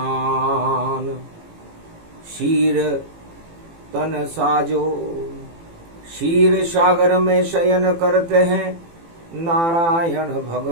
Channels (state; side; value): late; left; 18 ms